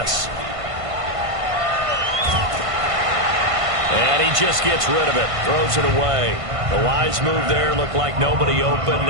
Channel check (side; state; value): left; late; 1.5 ms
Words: And he just gets rid of it, throws it away. The wise move there, looked like nobody open,